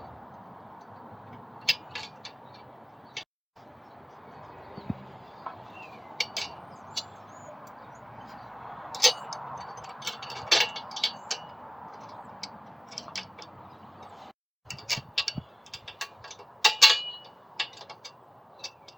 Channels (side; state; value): both; identical; correlation 1.00